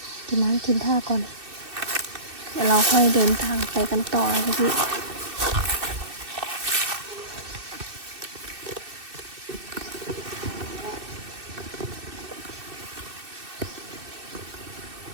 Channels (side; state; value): left; late; 2.6 ms